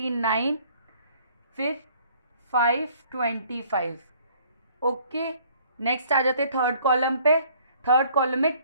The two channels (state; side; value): inverted; both; correlation -0.58